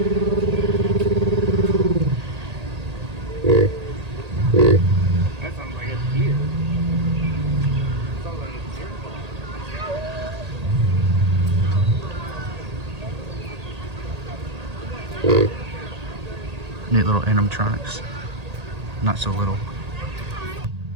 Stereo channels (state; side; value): late; left; 1.8 ms